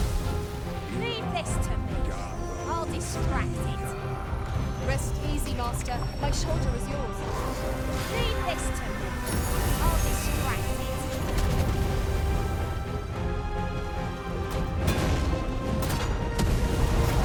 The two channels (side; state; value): both; identical; correlation 1.00